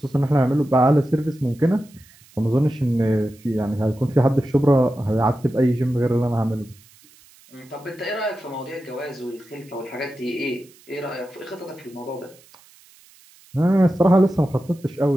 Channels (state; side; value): noise; right; hiss, 27 dB below the sound